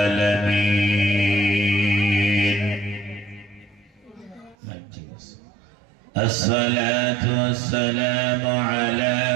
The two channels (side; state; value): left; drops out; at 4.5 s